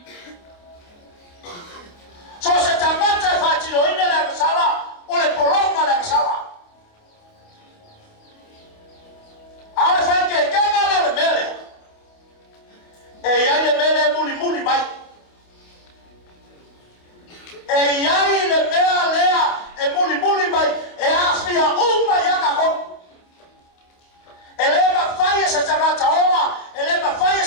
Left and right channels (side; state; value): right; late; 28 ms